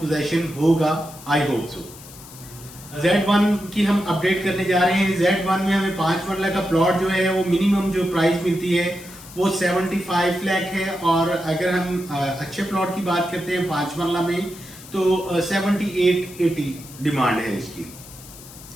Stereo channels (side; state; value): left; noise; hiss, 18 dB below the sound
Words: पोजेशन होगा, आई होप सो। Z1 की हम अपडेट करने जा रहे हैं। Z1 में हमें 5 मरला का प्लॉट जो है वो मिनिमम जो प्राइस मिलती है वो 75 लाख है, और अगर हम अच्छे प्लॉट की बात करते हैं 5 मरला में तो 78-80 डिमांड है इसकी।